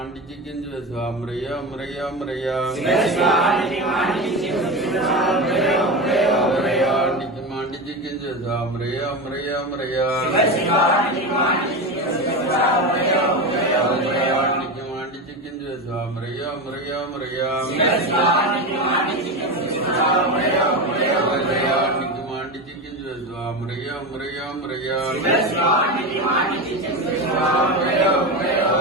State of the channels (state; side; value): normal; both; correlation 0.20